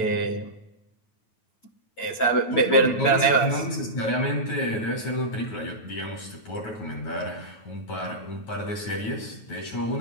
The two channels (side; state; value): right; late; 9.2 ms